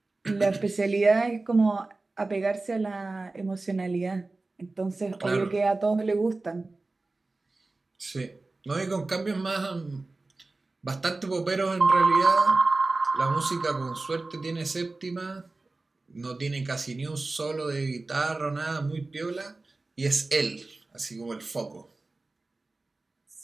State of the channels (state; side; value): quieter; left; 3.3 dB